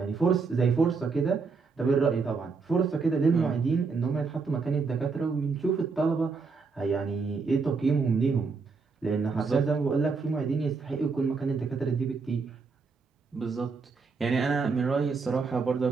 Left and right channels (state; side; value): quieter; left; 4.7 dB